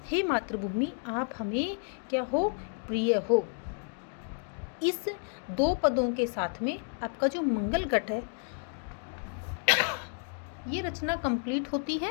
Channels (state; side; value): silent; right; 57 dB below the other